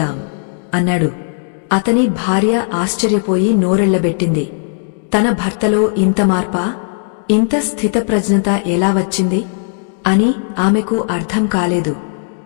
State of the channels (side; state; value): right; silent; digital silence